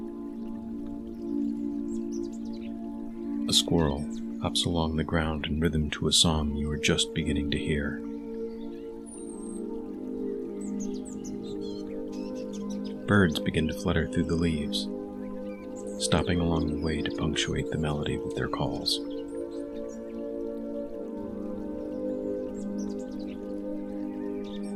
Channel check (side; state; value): both; identical; correlation 1.00